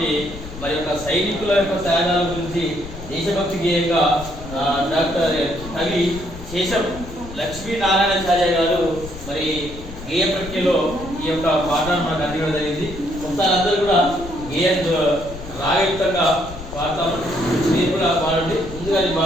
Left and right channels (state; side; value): noise; left; rumble, 13 dB below the sound